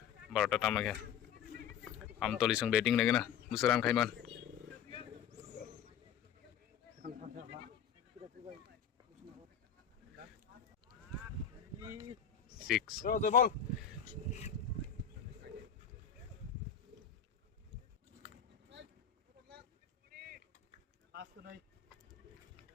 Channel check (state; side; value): quieter; right; 7.9 dB